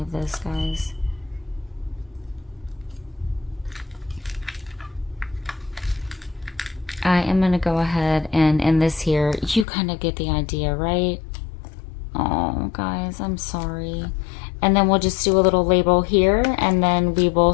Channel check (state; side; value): drops out; right; at 9.7 s